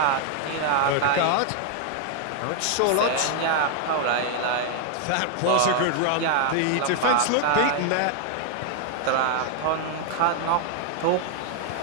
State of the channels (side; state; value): both; different; correlation 0.00